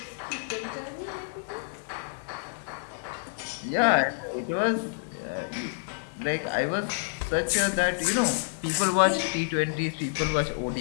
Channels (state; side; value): silent; right; digital silence